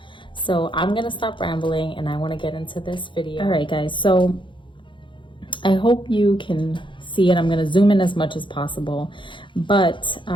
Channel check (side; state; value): right; late; 0.24 ms